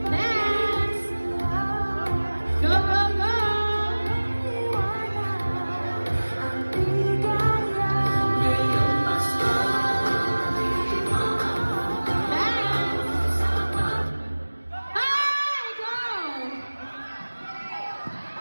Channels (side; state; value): both; inverted; correlation -1.00